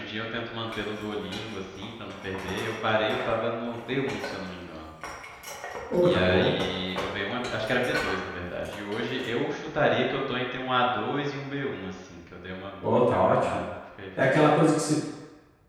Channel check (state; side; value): identical; both; correlation 1.00